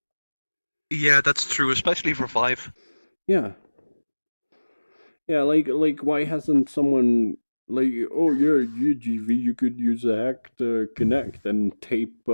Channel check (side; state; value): both; inverted; correlation -1.00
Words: Yeah, that's true, especially for Vive. Yeah, like why hasn't someone like, oh yeah, UGV, you could use a hack to connect and tape